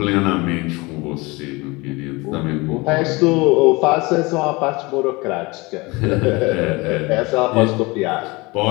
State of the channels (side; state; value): right; quieter; 24.4 dB